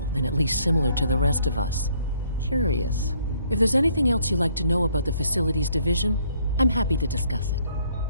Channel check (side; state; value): both; inverted; correlation -0.66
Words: then at least similar to the rest of us. Curious. If there's anything else you'd like to know about the Facilities Division, I'm happy to discuss it.